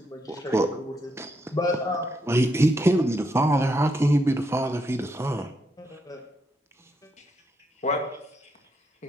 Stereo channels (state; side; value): normal; both; correlation 0.79